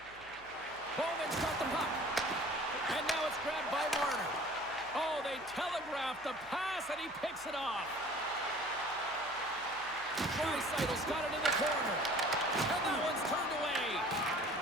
Bowman's got the puck. And now it's grabbed by Marner. Oh, they telegraphed the pass, and he picks it off. Draisaitl's got it in the corner. And that one's turned away.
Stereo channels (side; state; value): right; noise; hum, 25 dB below the sound